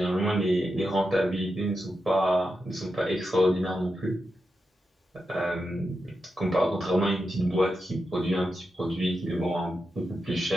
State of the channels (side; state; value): both; normal; correlation 0.88